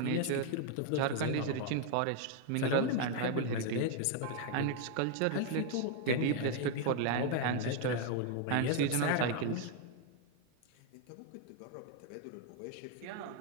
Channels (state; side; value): different; both; correlation 0.01